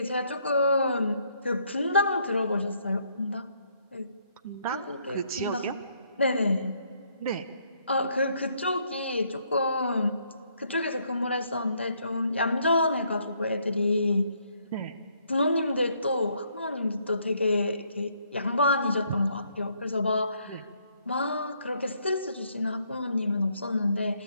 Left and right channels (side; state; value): both; inverted; correlation -0.70